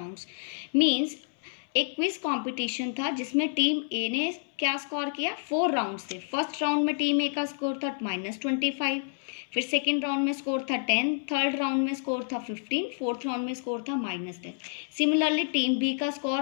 Means एक क्विज कंपटीशन था जिसमें टीम ए ने क्या स्कोर किया, 4 round थे। First round में team ए का score था -25, फिर सेकेंड राउंड में स्कोर था 10, थर्ड राउंड में स्कोर था 15, फोर्थ राउंड में स्कोर था -10। सिमिलरली टीम बी का स्कोर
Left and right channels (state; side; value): silent; right; 59 dB below the other